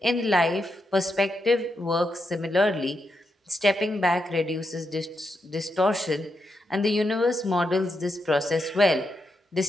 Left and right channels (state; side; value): normal; both; correlation 0.84